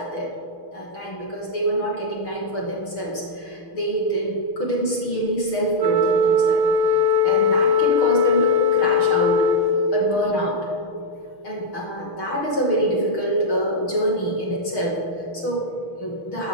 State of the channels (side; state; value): right; late; 6.4 ms